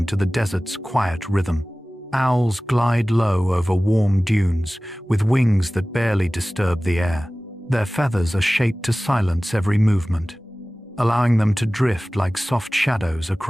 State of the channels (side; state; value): both; normal; correlation 0.97